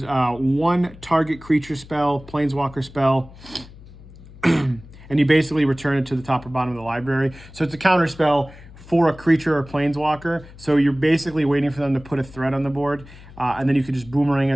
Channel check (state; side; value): noise; left; hum, 19 dB below the sound